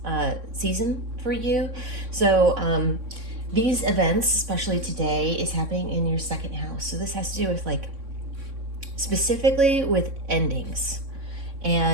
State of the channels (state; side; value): late; left; 3.6 ms